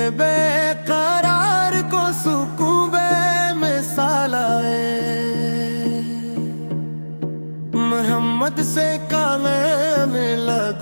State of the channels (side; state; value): both; inverted; correlation -1.00